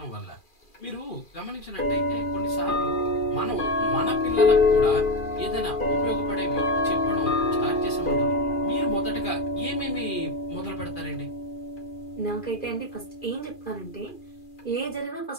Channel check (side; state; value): right; late; 2.4 ms